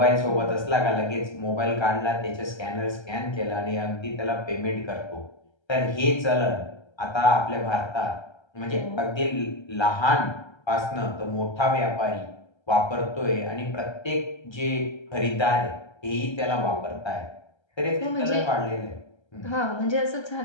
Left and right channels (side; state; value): right; late; 1.3 ms